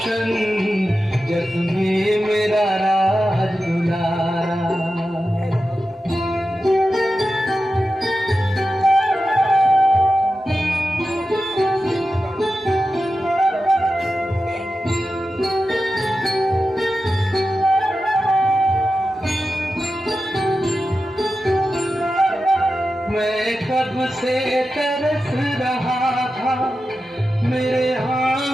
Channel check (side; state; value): both; normal; correlation 0.92